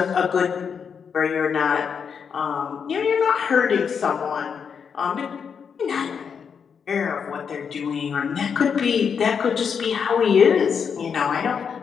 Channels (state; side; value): quieter; right; 6.7 dB